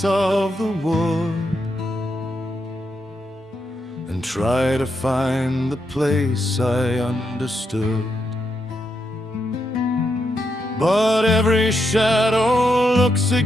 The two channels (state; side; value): normal; both; correlation 0.82